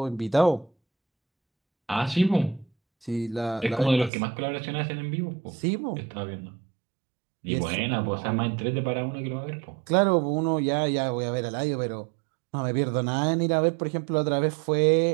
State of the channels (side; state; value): left; drops out; at 4.1 s